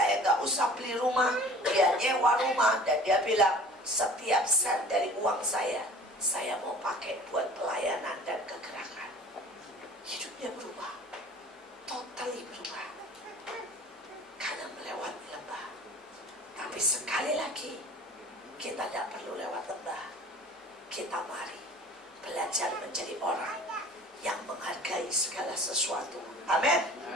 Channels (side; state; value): both; normal; correlation 0.45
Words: gak usah beli rumah. Dia nyewa rumah, dan dia bilang, setiap sen dari uang saya mau pakai buat pelayanan dan kegerakan. Hidupnya berubah, totally berubah, karena melewati lembah. Tapi sekali lagi, kita tidak perlu lewat lembah. Kita mari belajar menjadi orang yang menghargai segala sesuatu. Amin.